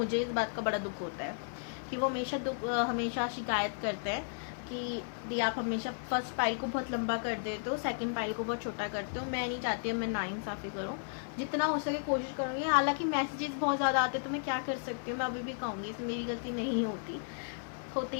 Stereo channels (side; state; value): right; silent; 55 dB below the other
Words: इस बात का बड़ा दुख होता है कि वो हमेशा शिकायत करते हैं कि दी आप हमेशा फर्स्ट फाइल को बहुत लंबा कर देते हो, सेकंड फाइल को बहुत छोटा करते हो। मैं नहीं चाहती मैं नाइंसाफ़ी करूँ, जितना हो सके कोशिश करूँगी। हालांकि मैसेजेस बहुत ज़्यादा आते तो मैं क्या कर सकती हूँ, मैं अभी भी कहूँगी इसमें मेरी गलती नहीं होती